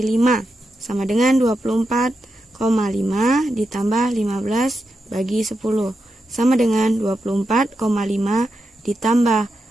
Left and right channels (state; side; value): normal; both; correlation 0.87